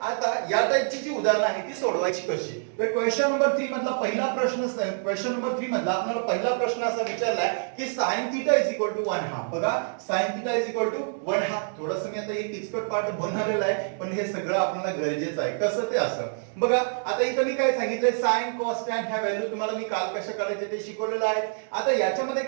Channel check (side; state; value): left; silent; digital silence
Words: आता या टाइपची जी उदाहरणं आहे ती सोडवायची कशी? तर क्वेश्चन नंबर 3 मधला पहिला प्रश्न, क्वेश्चन नंबर 3 मधला आपल्याला पहिला प्रश्न असा विचारलाय की sin theta is equal to 1/2. बघा, sin theta is equal to 1/2. थोडंसं मी आता एक किचकट पार्ट बनवलेला आहे, पण हे सगळं आपल्याला गरजेचं आहे. कसं ते असं बघा. आता इथं मी काय सांगितलंय? sin cos tan ह्या व्हॅल्यू तुम्हाला मी काल कशा करायचे ते शिकवलेलं आहे. आता याच्यामध्ये